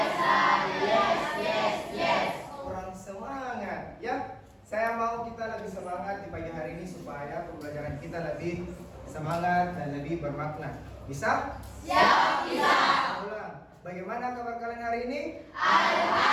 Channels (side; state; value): both; identical; correlation 1.00